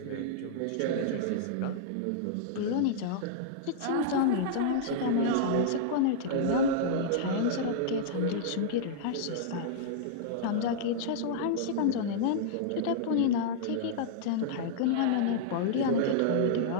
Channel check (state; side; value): different; both; correlation -0.02